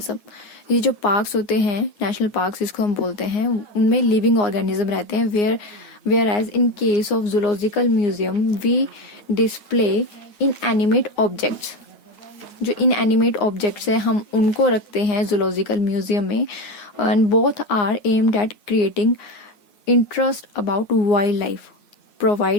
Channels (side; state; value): right; late; 9.7 ms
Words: ये जो पार्क्स होते हैं, नेशनल पार्क्स जिसको हम बोलते हैं, उनमें लिविंग ऑर्गेनिज्म रहते हैं. Where as in case of zoological museum we display inanimate objects. जो इन एनिमेट ऑब्जेक्ट्स है हम उनको रखते हैं जूलॉजिकल म्यूजियम में. And both are aimed at creating interest about wildlife,